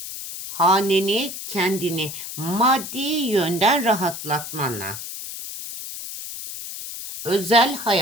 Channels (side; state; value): left; noise; hiss, 9 dB below the sound